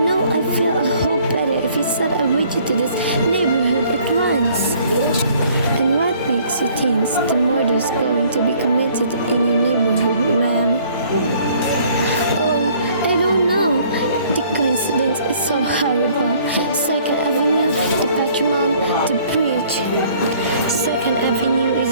I feel a whole better if you send a widget to this neighborhood at once. And what makes you think the murder's going to be committed in your neighborhood, ma'am? Oh, I don't know. The coincidence is so horrible. 2nd Avenue, the Patrimon, the bridge. 2nd Avenue is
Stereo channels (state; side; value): inverted; both; correlation -0.58